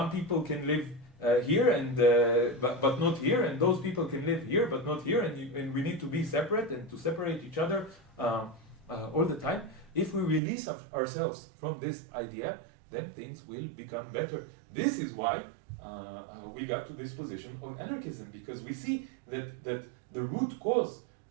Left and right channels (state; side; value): drops out; left; at 10.4 s